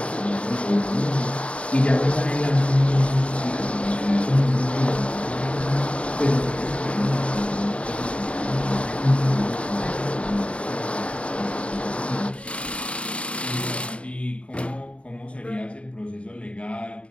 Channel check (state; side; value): late; right; 0.061 ms